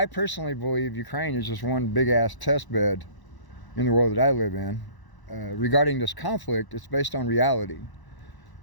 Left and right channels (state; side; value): late; right; 1.0 ms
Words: personally believe Ukraine is just one big-ass test bed in the world that I live in. Regarding this conflict, it's based on reality.